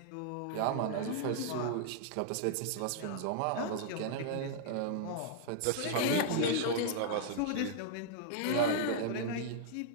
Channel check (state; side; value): different; both; correlation -0.01